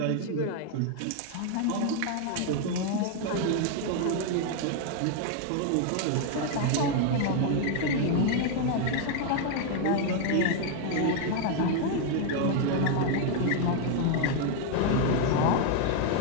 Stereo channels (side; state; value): both; different; correlation 0.00